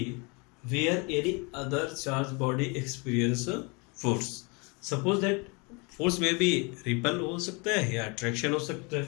where any other charge body experience force. Suppose that force में भी रिपल हो सकता है या अट्रैक्शन हो सकता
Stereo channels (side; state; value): right; quieter; 30.3 dB